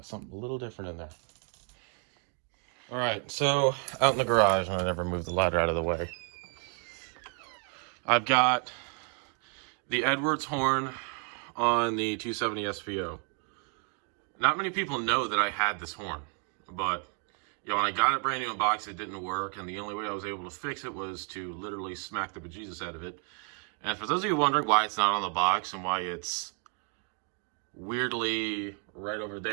something a little different in there. All right, so out in the garage, and I never moved the ladder out of the way. I've got the Edwards horn on the 270 SPO. Not many people know that I had this horn, but when I got it brand new in box, it didn't work, and the only way I was able to fix it was to literally smack the bejesus out of it. And for those of you wondering why it's not on the box and why it's weirdly right over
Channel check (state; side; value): quieter; left; 38.1 dB